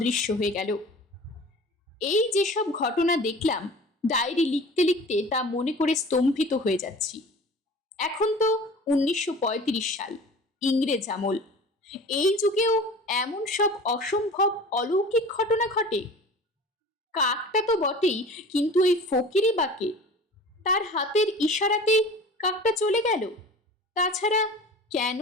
হয়ে গেল। এই যেসব ঘটনা দেখলাম, ডায়েরি লিখতে লিখতে তা মনে করে স্তম্ভিত হয়ে যাচ্ছি। এখন তো 1935 সাল, ইংরেজ আমল। এই যুগেও এমন সব অসম্ভব অলৌকিক ঘটনা ঘটে। কাকটা তো বটেই, কিন্তু এই ফকিরি বাকে, তার হাতের ইশারাতেই কাকটা চলে গেল। তাছাড়া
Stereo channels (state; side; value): normal; both; correlation 0.41